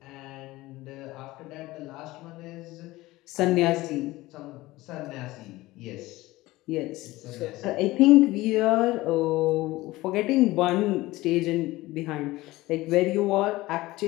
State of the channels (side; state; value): right; quieter; 18.8 dB